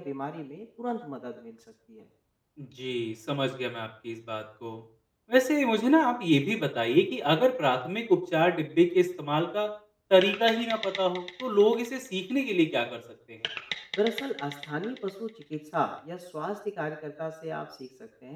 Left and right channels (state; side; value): identical; both; correlation 1.00